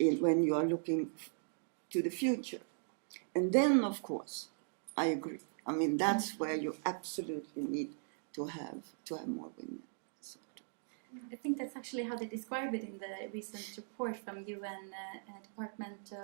you are looking to the future. And then, of course, I agree. I mean, that's where you absolutely need to have more women. I think that's actually how they describe it in the recent report from UN Department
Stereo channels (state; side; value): silent; left; digital silence